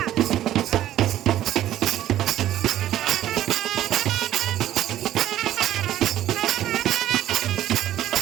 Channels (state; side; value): quieter; left; 12.8 dB